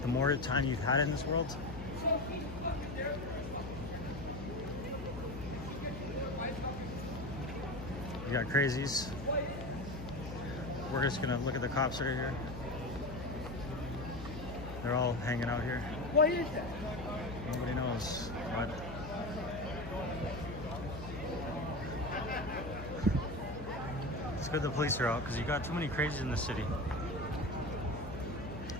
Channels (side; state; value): left; noise; hum, 10 dB below the sound